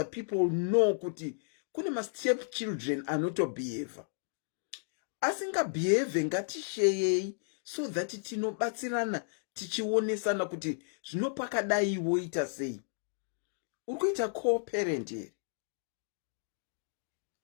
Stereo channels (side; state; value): right; silent; digital silence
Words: people know kuti kune ma stepchildren anotobehave. Asingabehave ngatishare so that tinobatsirana tichionesana kuti zvinopakadai woita sei. Urikuita co-parent here.